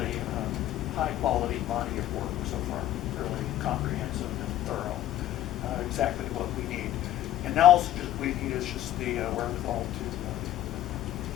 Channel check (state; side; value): quieter; right; 12.9 dB